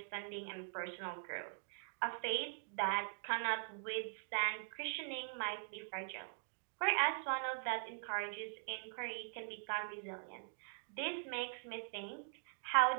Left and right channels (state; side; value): silent; left; digital silence